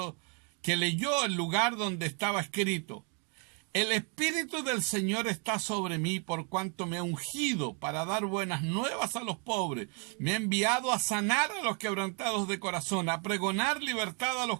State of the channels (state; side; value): quieter; left; 37.7 dB